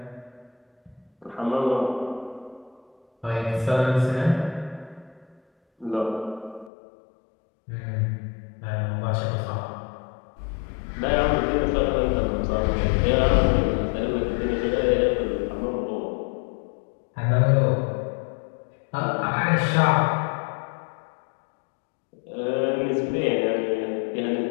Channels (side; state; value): right; drops out; at 6.7 s